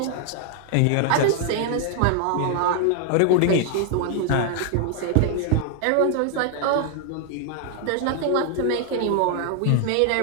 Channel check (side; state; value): both; different; correlation 0.00